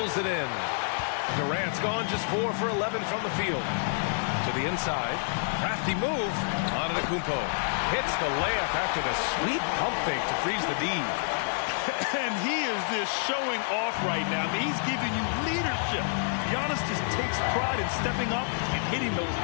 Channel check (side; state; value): right; silent; digital silence